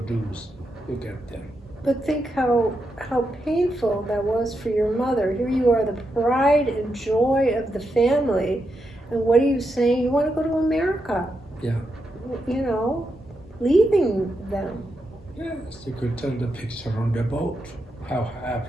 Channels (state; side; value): normal; both; correlation 0.84